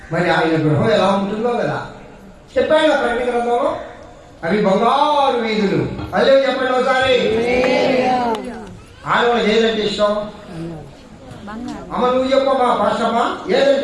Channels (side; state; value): both; identical; correlation 1.00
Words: మరి ఆయన గృహం ఎలా ఉంటుందో కదా చెప్పాడు ఆ ప్రకటన గ్రంథంలో. అవి బంగారు వీధులు. అదే చెప్పండి ఒకసారి. ఆడవాళ్ళకి ఏదంటే ఇష్టం? అమ్మ నువ్వు చెప్పమ్మా, పాస్టమ్మా,